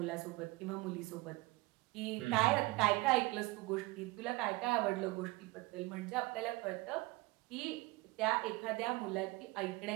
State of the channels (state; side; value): quieter; left; 21.7 dB